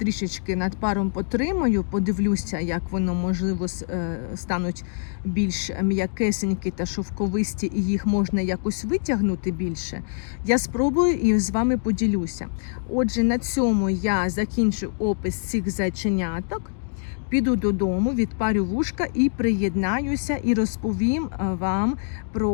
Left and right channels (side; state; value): right; silent; digital silence